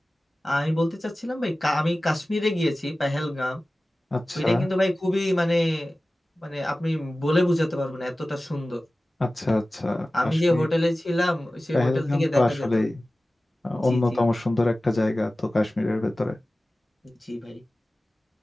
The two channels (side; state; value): both; normal; correlation 0.96